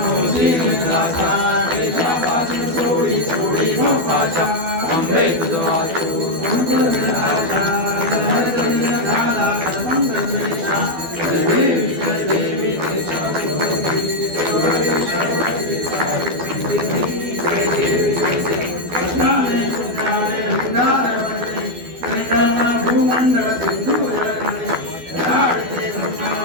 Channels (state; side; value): late; left; 12 ms